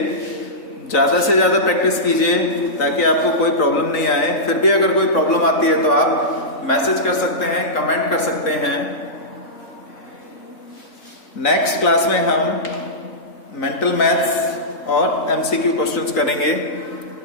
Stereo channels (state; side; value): late; right; 3.9 ms